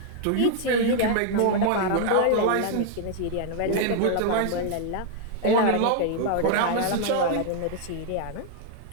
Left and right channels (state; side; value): different; both; correlation 0.00